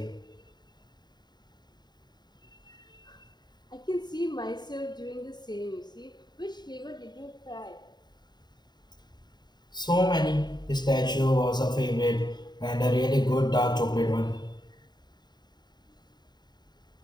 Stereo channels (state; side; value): late; right; 0.21 ms